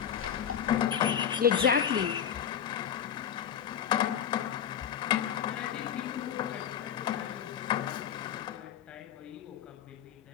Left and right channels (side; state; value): right; quieter; 8.8 dB